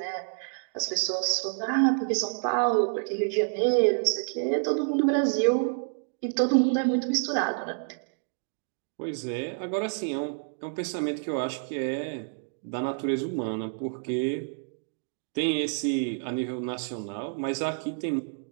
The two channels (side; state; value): left; silent; digital silence